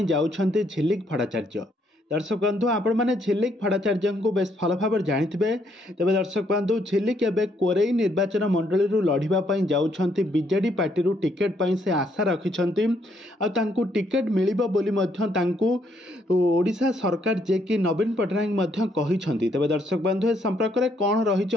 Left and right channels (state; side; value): normal; both; correlation 0.71